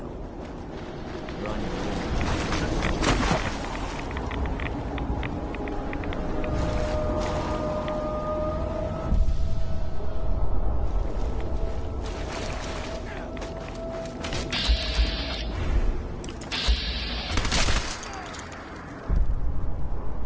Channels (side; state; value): both; identical; correlation 1.00